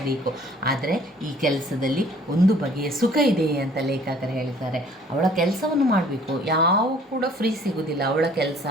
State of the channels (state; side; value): normal; both; correlation 0.55